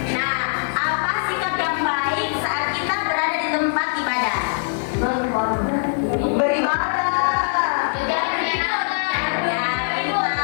Nah, apa sikap yang baik saat kita berada di tempat ibadah? Beribadah.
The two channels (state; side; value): silent; right; digital silence